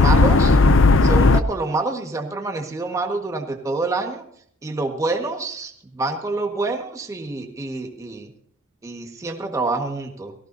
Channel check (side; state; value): both; normal; correlation 0.60